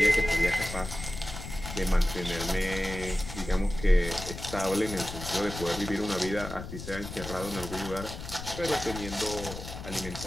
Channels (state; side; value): noise; left; rumble, 9 dB below the sound